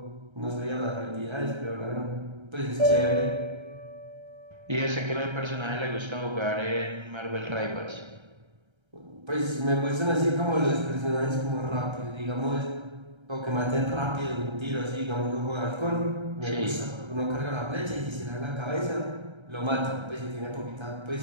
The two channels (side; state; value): left; late; 1.3 ms